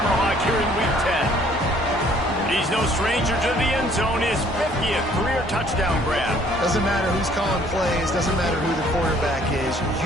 here in Week 10. He's no stranger to the end zone. His 50th career touchdown grab. Doesn't matter who's calling plays. Doesn't matter who the quarterback is.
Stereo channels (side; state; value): both; normal; correlation 0.60